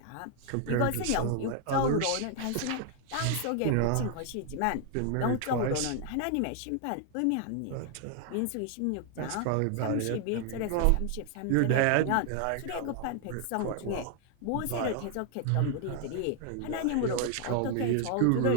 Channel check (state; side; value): different; both; correlation 0.00